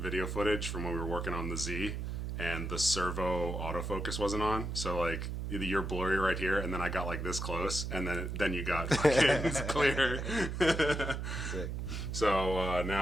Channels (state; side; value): noise; right; hum, 4 dB below the sound